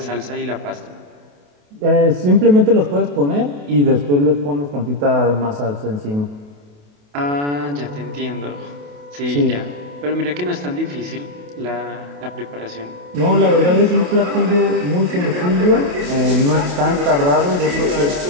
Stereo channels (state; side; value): late; left; 28 ms